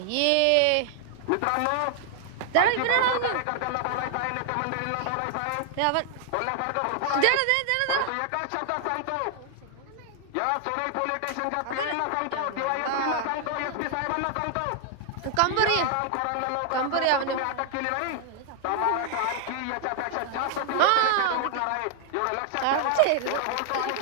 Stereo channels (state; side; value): different; both; correlation 0.00